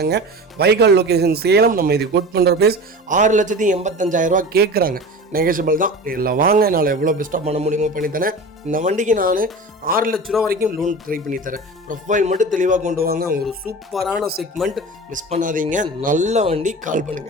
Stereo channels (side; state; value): both; normal; correlation 0.33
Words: வைகால் லொக்கேஷன் சேலம். நம்ம இது கோட் பண்ணுற ப்ரைஸ் 6,85,000 ரூபா கேட்குறாங்க. நெகோஷியபிள் தான். இல்லை வாங்க, என்னால் எவ்வளோ பெஸ்ட்டாக பண்ண முடியுமோ பண்ணித்தரேன். இந்த வண்டிக்கு நான் 6 லட்ச ரூபா வரைக்கும் லோன் ட்ரை பண்ணித்தரேன். ப்ரொஃபைல் மட்டும் தெளிவாக கொண்டு வாங்க. ஒரு சூப்பரான செக்மெண்ட், மிஸ் பண்ணாதீங்க. நல்ல வண்டி, கால்